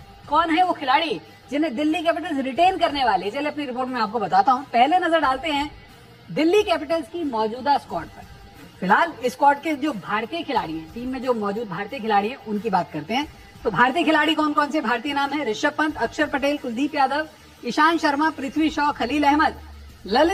कौन है वो खिलाड़ी जिन्हें दिल्ली कैपिटल्स रिटेन करने वाले? चलिए अपनी रिपोर्ट में आपको बताता हूं। पहले नजर डालते हैं दिल्ली कैपिटल्स की मौजूदा स्क्वाड पर। फिलहाल स्क्वाड के जो भारतीय खिलाड़ी हैं, टीम में जो मौजूद भारतीय खिलाड़ी हैं उनकी बात करते हैं। तो भारतीय खिलाड़ी कौन कौन से भारतीय नाम है? ऋषभ पंत, अक्षर पटेल, कुलदीप यादव, ईशांत शर्मा, पृथ्वी शॉ, खलील अहमद,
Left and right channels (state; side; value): identical; both; correlation 1.00